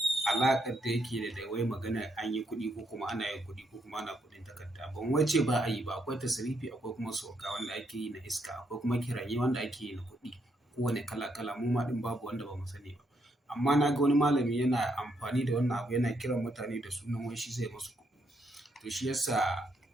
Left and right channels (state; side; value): normal; both; correlation 0.76